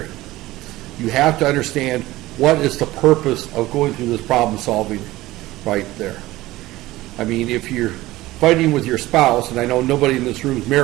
You have to understand what is the purpose of going through this problem solving right there. I mean, if you're fighting with your spouse, and I know nobody in this room is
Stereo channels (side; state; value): left; quieter; 17.6 dB